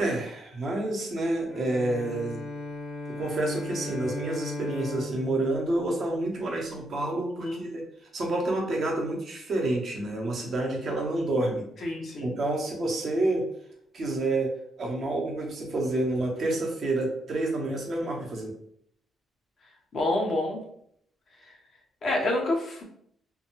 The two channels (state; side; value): normal; both; correlation 0.77